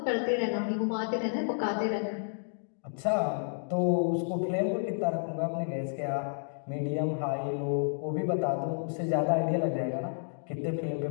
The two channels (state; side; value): silent; right; digital silence